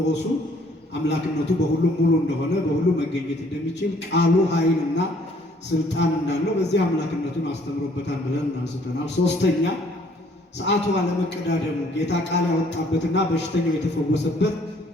አምላክነቱ በሁሉም ሙሉ እንደሆነ በሁሉም መገኘት እንደሚችል ቃሉ ኃይልና ስልጣን እንዳለው በዚህ አምላክነቱን አስተምሮበታል ብለን አንስተናል። ሶስተኛ ሰዓቱ አለመቀዳደሙ ጌታ ቃል ያወጣበትና በሽተኛው የተፈወሰበት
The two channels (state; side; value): normal; both; correlation 0.61